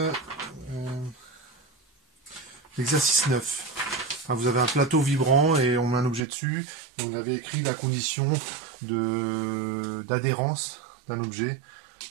9. Vous avez un plateau vibrant et on met un objet dessus. Et on avait écrit la condition d'adhérence d'un objet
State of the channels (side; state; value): left; drops out; at 6.2 s